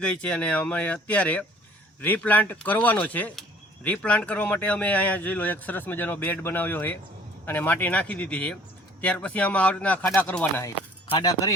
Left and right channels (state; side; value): normal; both; correlation 0.54